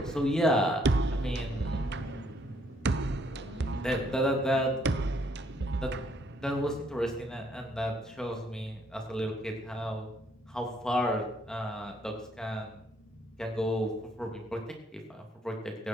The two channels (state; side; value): normal; both; correlation 0.68